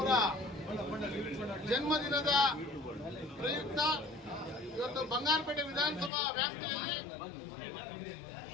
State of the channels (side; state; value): right; drops out; at 6.1 s